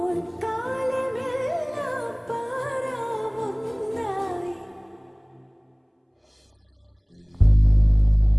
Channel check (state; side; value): identical; both; correlation 1.00